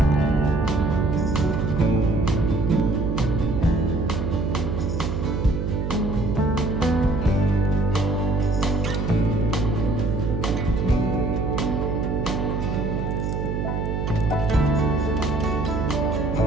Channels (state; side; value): noise; right; hum, 1 dB below the sound